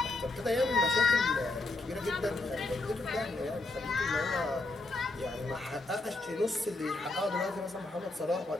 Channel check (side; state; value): right; quieter; 3.0 dB